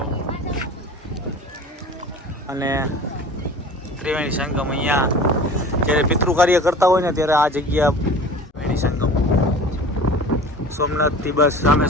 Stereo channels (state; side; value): normal; both; correlation 0.41